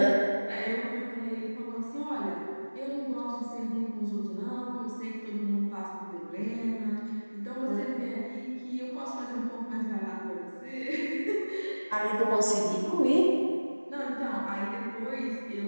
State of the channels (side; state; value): both; inverted; correlation -1.00